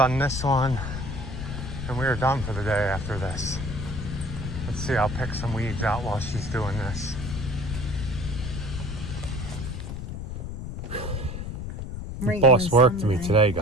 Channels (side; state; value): left; noise; rumble, 6 dB below the sound